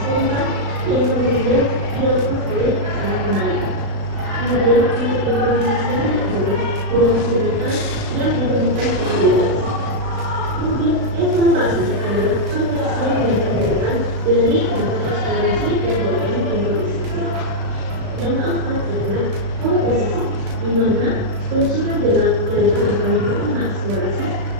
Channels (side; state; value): left; late; 36 ms